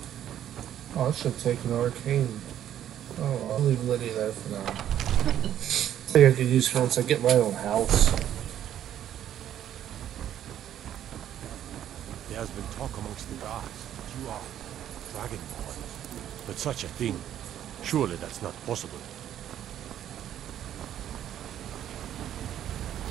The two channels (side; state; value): left; quieter; 10.9 dB